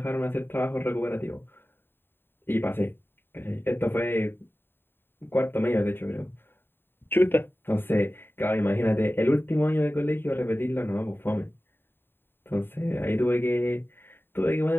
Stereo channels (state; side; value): late; right; 0.10 ms